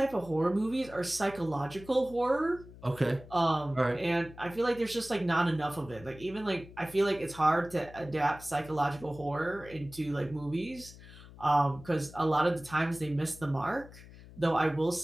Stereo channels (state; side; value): noise; left; hum, 18 dB below the sound